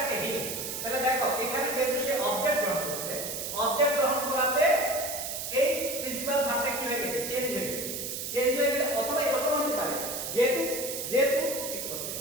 হি, তাহলে দেখো এখানে যেহেতু সে অবজেক্ট গ্রহণ করছে, অবজেক্ট গ্রহণ করাতে এই প্রিন্সিপাল ভার্বটা কি হয়ে গেছে, চেঞ্জ হয়ে গেছে। চেঞ্জ হয়ে গেলে অথবা এরকম হতে পারে, যেহেতু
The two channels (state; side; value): noise; right; hiss, 5 dB below the sound